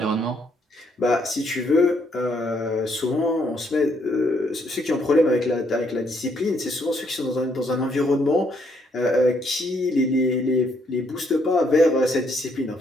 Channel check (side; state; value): both; normal; correlation 0.71